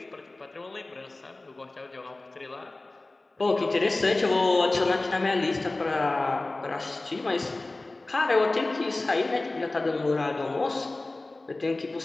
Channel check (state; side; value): quieter; right; 3.0 dB